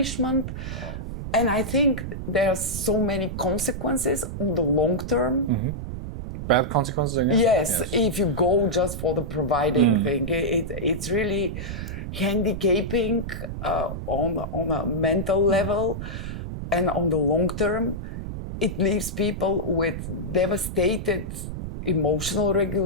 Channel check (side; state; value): right; noise; rumble, 6 dB below the sound